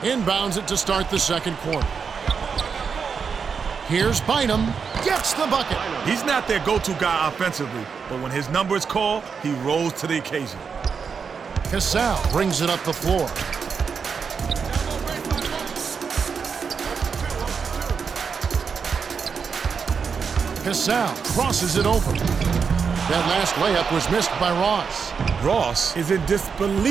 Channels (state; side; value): quieter; left; 6.0 dB